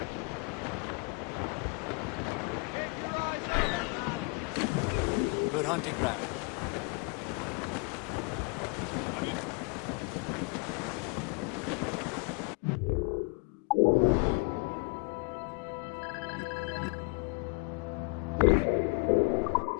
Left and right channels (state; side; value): quieter; right; 32.2 dB